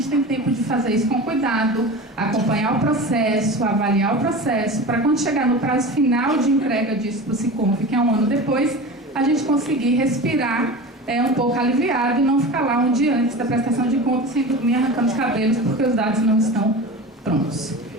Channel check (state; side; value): normal; both; correlation 0.32